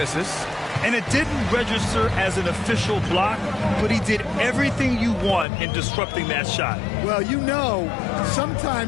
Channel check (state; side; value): drops out; right; at 5.5 s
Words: And it didn't register as an official block, but he did everything you want in disrupting that shot. Well, you know,